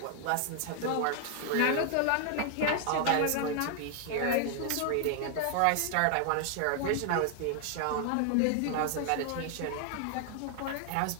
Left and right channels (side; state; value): both; different; correlation 0.00